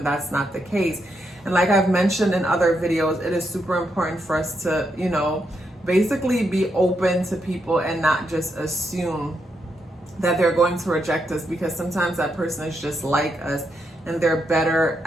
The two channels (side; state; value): both; normal; correlation 0.81